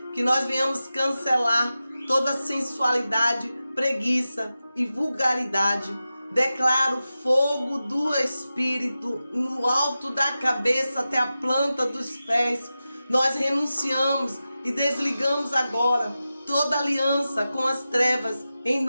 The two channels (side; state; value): both; inverted; correlation -0.93